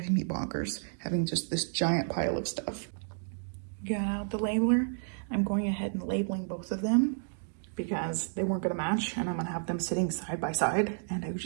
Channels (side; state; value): left; silent; digital silence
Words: me bonkers having just this giant pile of stuff. Got out the labeler. I'm going ahead and labeling both of them because they weren't going to match and I'm going to have them sitting side by side and I